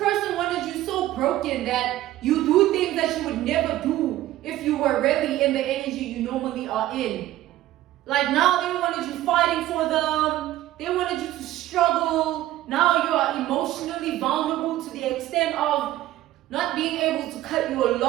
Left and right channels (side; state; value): left; quieter; 14.7 dB